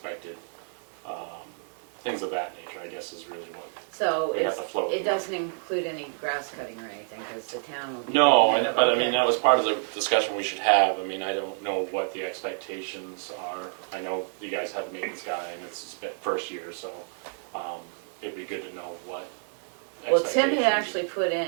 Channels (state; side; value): silent; left; 59 dB below the other